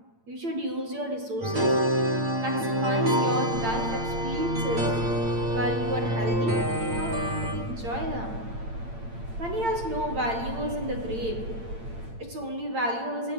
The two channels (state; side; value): late; left; 8.8 ms